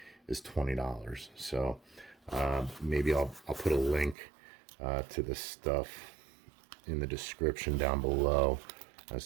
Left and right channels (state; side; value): drops out; left; at 4.2 s